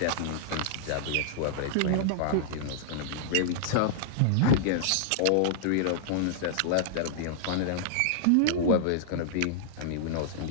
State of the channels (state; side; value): different; both; correlation -0.01